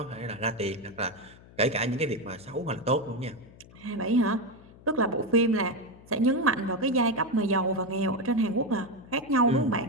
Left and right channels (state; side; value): noise; left; hum, 22 dB below the sound